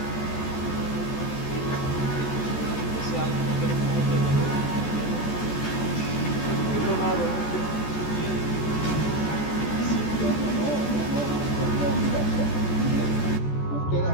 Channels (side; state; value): right; late; 14 ms